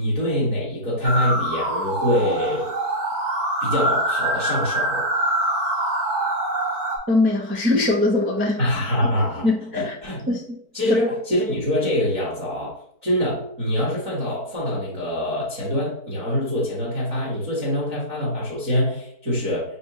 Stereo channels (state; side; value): late; left; 4.5 ms